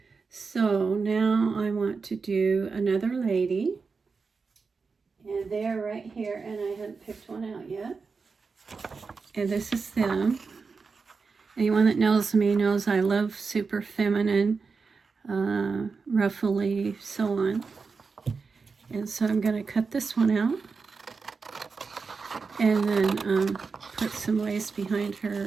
So now I want to do another lady. And they're right here, and I hadn't picked one out yet. And this is them. Anyone that knows me knows I love super feminine, ruffly, so on. And so I'm going to cut this one out. And then put some lace behind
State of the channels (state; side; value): quieter; left; 4.8 dB